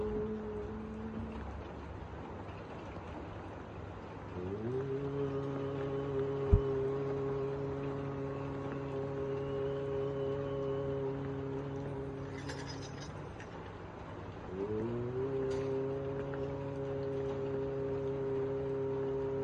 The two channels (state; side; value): identical; both; correlation 1.00